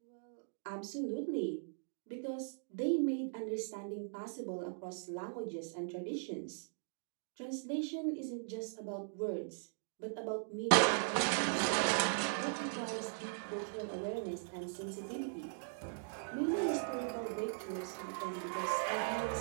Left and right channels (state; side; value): silent; left; digital silence